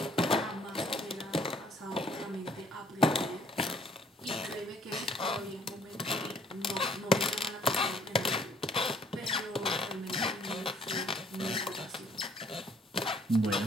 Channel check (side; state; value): both; normal; correlation 0.61